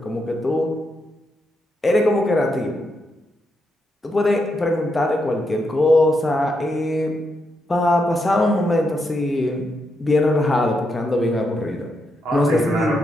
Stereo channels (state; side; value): normal; both; correlation 0.82